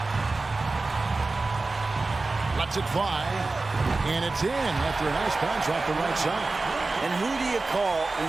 Lets it fly. And it's in after a nice bounce off the right side. And who do you call when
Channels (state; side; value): quieter; left; 3.5 dB